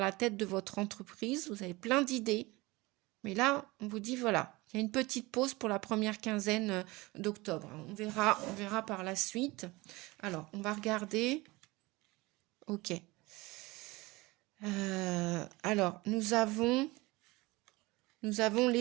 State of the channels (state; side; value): quieter; left; 22.2 dB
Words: tête de votre entreprise, vous avez plein d'idées, mais là, on vous dit voilà, il y a une petite pause pour la première quinzaine d'octobre. On verra par la suite. Alors, on va regarder. Ok. Alors, nous avons